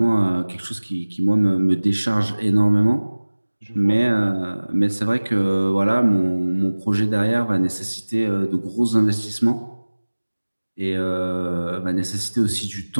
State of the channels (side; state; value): both; inverted; correlation -1.00